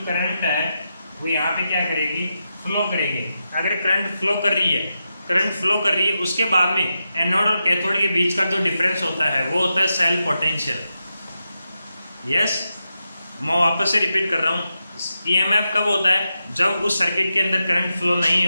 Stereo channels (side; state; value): both; inverted; correlation -0.88